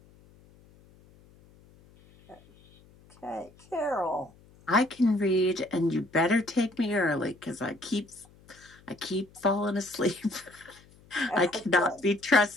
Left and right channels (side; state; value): left; noise; hum, 27 dB below the sound